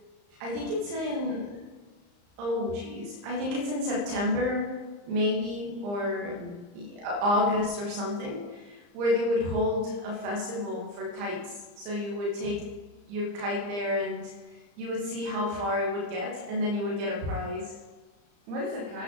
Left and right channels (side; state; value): left; late; 34 ms